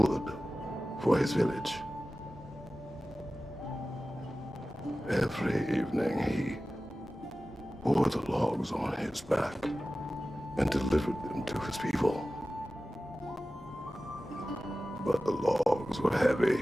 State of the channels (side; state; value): both; normal; correlation 0.95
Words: for his village. Every evening he bore the logs on his back and delivered them to his people. But the logs were heavy,